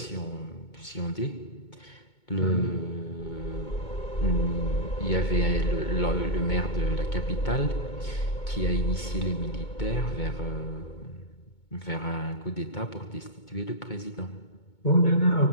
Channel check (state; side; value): late; right; 2.2 ms